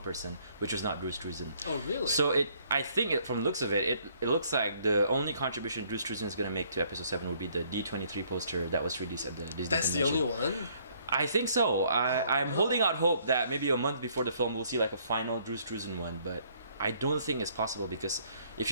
which was not Drew Struzan. Oh, really? So I think from the looks of it looks like the only contribution Drew Struzan is going to make to Episode 7 would be the D23 poster that was released at the Disney That's convention. the only one? I think so. I'm holding out hope that maybe a month before the film we'll see like a final Drew Struzan one, but I don't think it's possible, because if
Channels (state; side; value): inverted; both; correlation -0.64